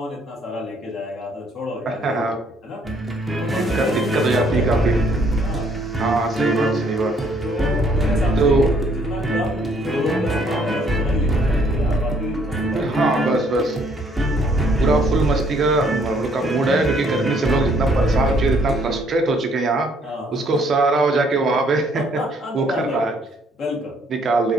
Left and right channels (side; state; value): both; normal; correlation 0.65